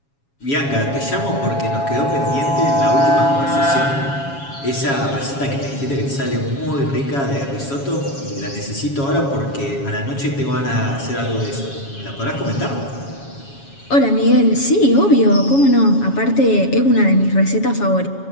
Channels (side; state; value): right; late; 7.2 ms